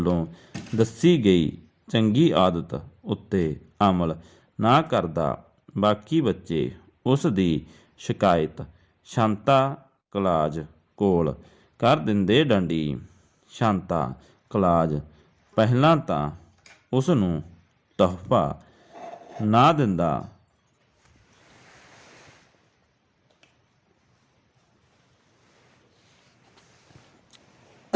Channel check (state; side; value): identical; both; correlation 1.00